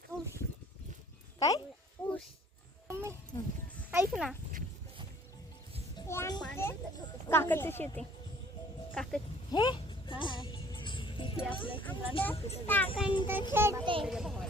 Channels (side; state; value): both; normal; correlation 0.55